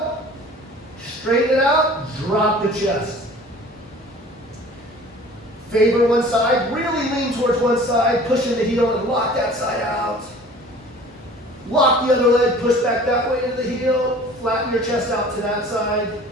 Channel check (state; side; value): normal; both; correlation 0.46